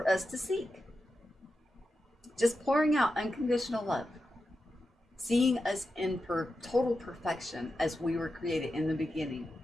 us to seek. Just pouring out unconditional love, seeing us in total perfection as we were created in the beginning,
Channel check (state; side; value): normal; both; correlation 0.90